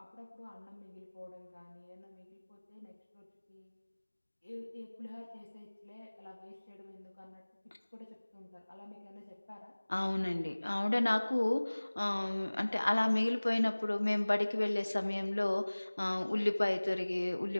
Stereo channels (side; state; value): both; inverted; correlation -1.00